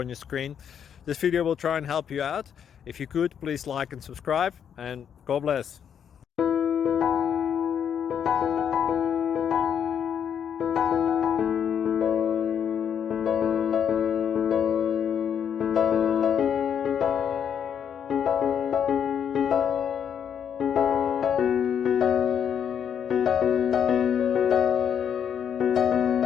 your screen. This video will try and help you out. If you could, please like and subscribe, and God bless.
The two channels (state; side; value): quieter; right; 8.2 dB